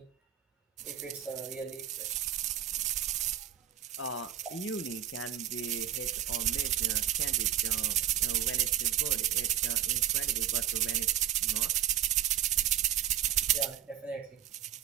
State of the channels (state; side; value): quieter; left; 11.3 dB